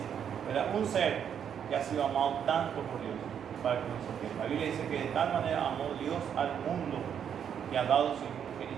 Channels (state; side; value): quieter; left; 8.4 dB